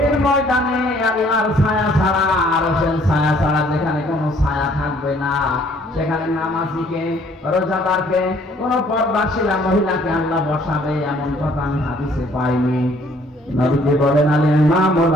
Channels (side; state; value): both; normal; correlation 0.61